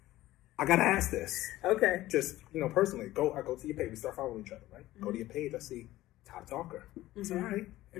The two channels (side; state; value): right; quieter; 16.0 dB